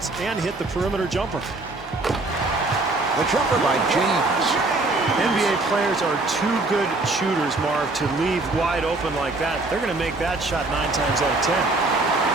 and hit the perimeter jumper. The jumper by James. NBA players are too good shooters, Marv, to leave wide open like that. They're going to make that shot 9 times out of 10.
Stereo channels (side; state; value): left; quieter; 3.1 dB